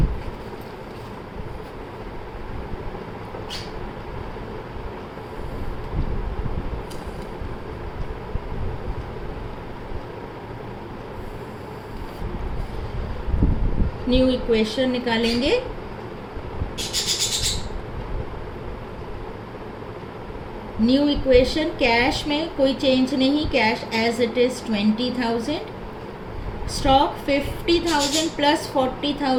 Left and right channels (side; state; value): both; identical; correlation 1.00